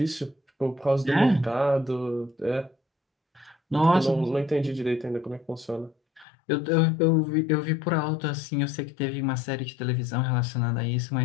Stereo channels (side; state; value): right; drops out; at 6.2 s